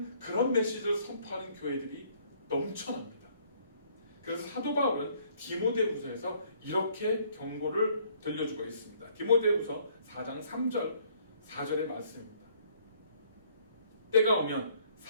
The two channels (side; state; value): both; inverted; correlation -0.63